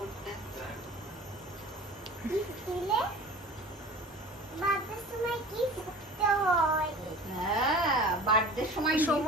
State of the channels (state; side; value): normal; both; correlation 0.40